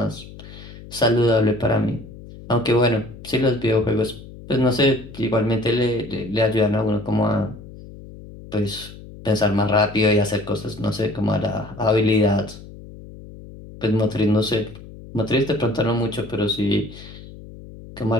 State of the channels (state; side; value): noise; left; hum, 16 dB below the sound